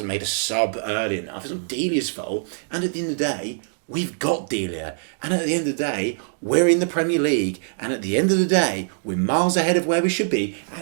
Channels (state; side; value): silent; left; digital silence